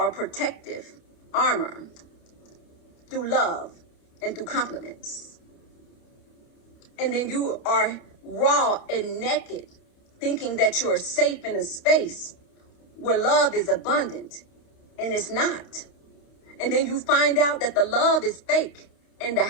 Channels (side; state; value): right; late; 29 ms